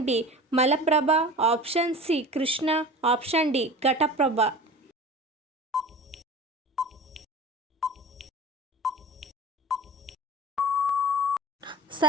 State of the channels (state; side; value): normal; both; correlation 0.36